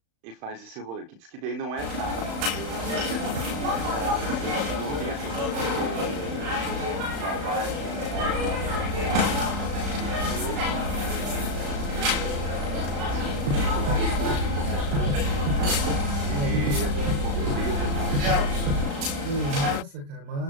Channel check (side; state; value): left; late; 35 ms